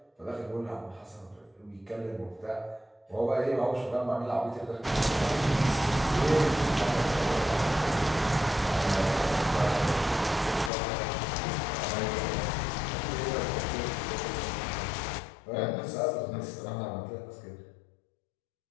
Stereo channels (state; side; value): drops out; right; at 10.7 s